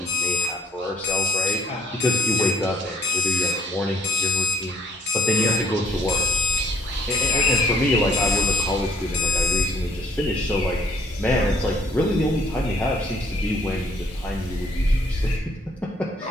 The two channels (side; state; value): both; normal; correlation 0.59